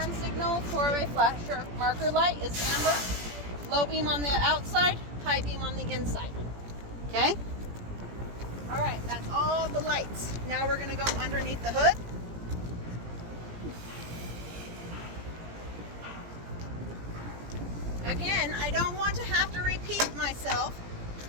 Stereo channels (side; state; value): left; late; 17 ms